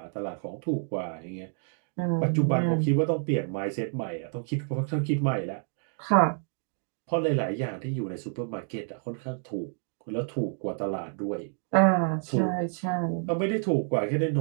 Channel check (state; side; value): silent; left; 57 dB below the other